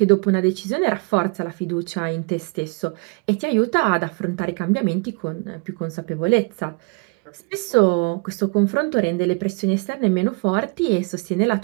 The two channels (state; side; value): quieter; left; 31.9 dB